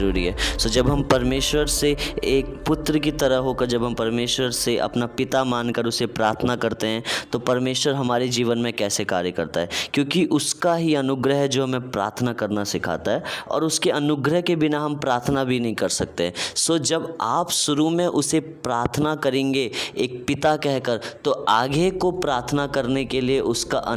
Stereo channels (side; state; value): both; identical; correlation 1.00